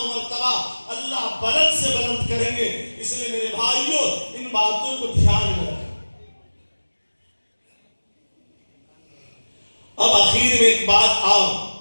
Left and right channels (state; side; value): inverted; both; correlation -1.00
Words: مرتبہ اللہ بلند سے بلند کریں گے۔ اس لیے میرے بھائیوں ان باتوں کو دھیان میں رکھیں۔ اب آخر میں ایک بات اور